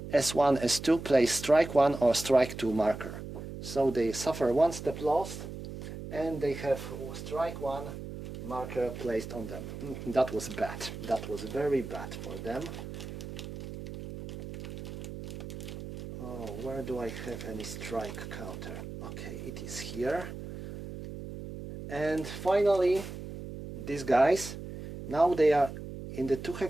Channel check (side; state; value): right; noise; hum, 9 dB below the sound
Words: S1, S2 place strike 1 or strike 2 marker. So they suffer 1 step lost, and they have strike 1 marker placed on them. That was bad. That was very bad for them. Oh, where do I have any strike counter? Okay, it is here. And finally, these guys, now they are in the 2